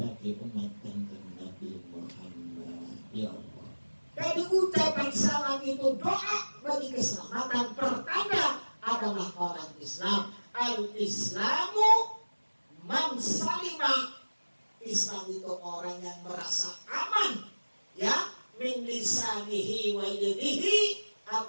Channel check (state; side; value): inverted; both; correlation -1.00